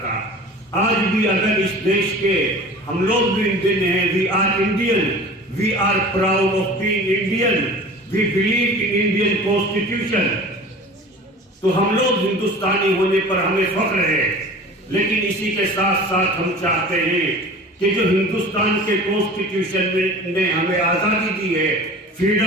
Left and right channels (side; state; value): both; normal; correlation 0.40